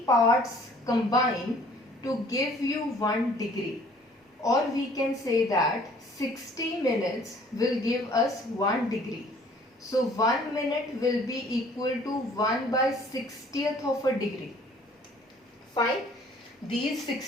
parts combine to give you 1 degree. Or we can say that 60 minutes will give us 1 degree. So 1 minute will be equal to 1 by 60th of a degree. Fine. These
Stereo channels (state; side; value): normal; both; correlation 0.55